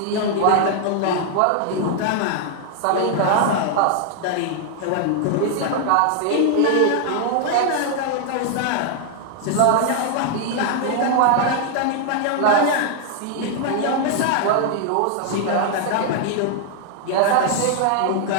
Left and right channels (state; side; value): different; both; correlation 0.00